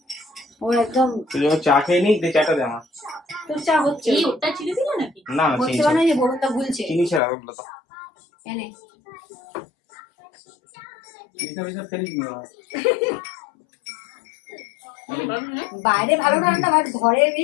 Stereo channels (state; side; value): drops out; right; at 7.2 s